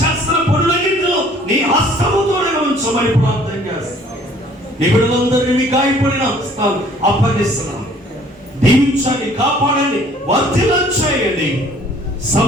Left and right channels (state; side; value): normal; both; correlation 0.56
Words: చేస్తున్న పనులన్నింటిలో నీ హస్తముతో ఉంచమని ప్రార్థన చేస్తున్నాం. నీ బిడ్డలందరినీ మీ గాయపడిన హస్తాలు అప్పగిస్తున్నాం. దీవించండి, కాపాడండి, వర్ధిల్లం చేయండి.